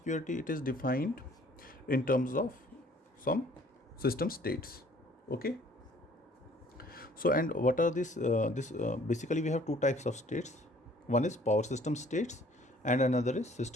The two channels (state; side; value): normal; both; correlation 0.56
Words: it is defined in terms of some system states. Okay. So, and what are this basically we have two types of states. One is power system states and another is